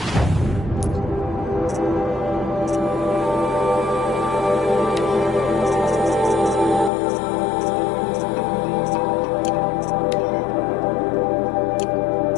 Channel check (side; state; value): right; drops out; at 6.9 s